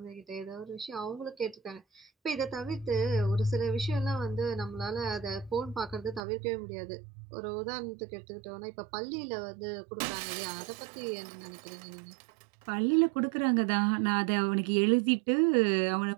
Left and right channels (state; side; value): drops out; left; at 6.2 s